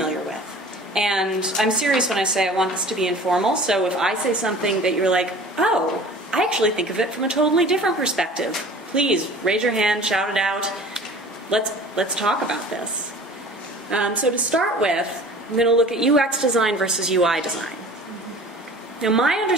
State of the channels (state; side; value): normal; both; correlation 0.44